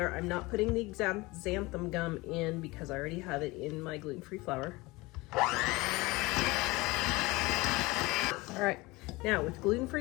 I'm not putting the xanthan gum in because I already have it in my gluten-free flour. All right, now with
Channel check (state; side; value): quieter; right; 22.5 dB